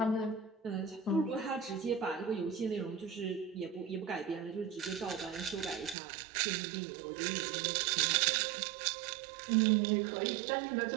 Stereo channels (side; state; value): left; drops out; at 6.0 s